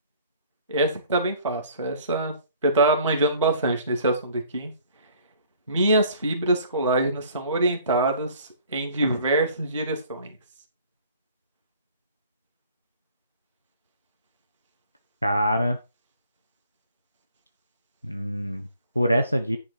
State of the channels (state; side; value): inverted; both; correlation -0.55